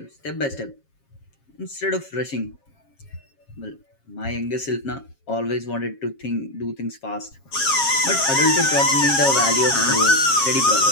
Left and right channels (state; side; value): late; right; 7.4 ms